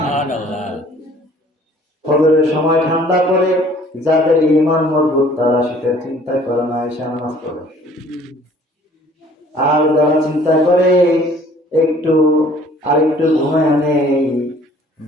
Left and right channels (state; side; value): normal; both; correlation 0.54